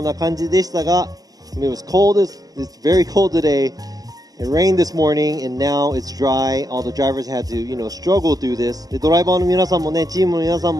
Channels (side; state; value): left; late; 0.18 ms